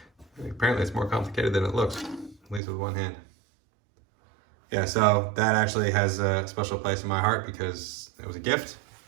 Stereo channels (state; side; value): drops out; left; at 2.6 s